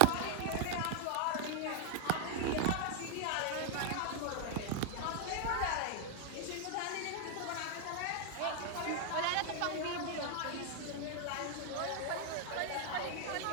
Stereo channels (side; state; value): both; different; correlation 0.00